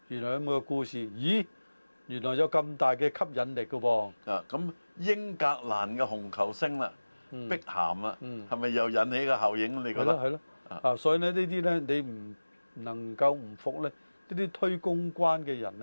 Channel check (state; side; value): inverted; both; correlation -1.00